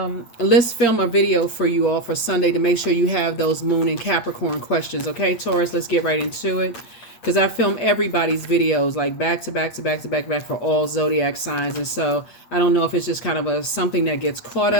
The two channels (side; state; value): right; late; 8.6 ms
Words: let's film a video for you all for Sunday to make sure you have those Moon and Capricorn questions. Okay, Taurus, let's get right into it. Because I film everybody's videos like back to back to back to back to back for all zodiac signs. And so I don't know if it's just kind of something that gets caught